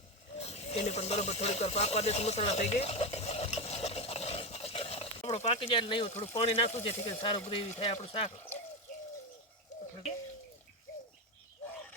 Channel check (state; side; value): normal; both; correlation 0.14